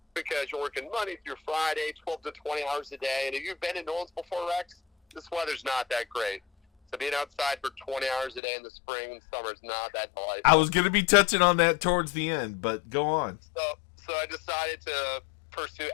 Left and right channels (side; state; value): right; drops out; at 8.4 s